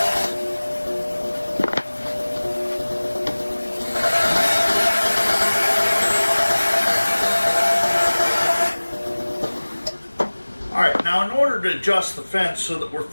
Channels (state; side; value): inverted; both; correlation -1.00